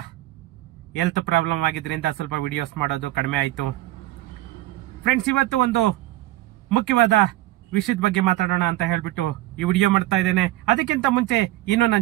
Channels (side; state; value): left; quieter; 16.6 dB